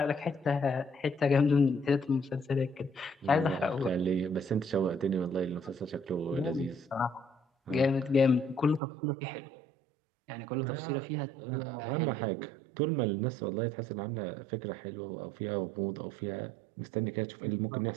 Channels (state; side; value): drops out; left; at 8.8 s